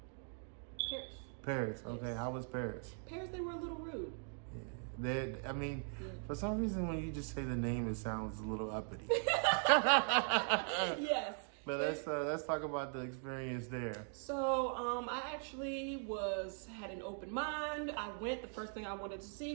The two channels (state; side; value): silent; left; 51 dB below the other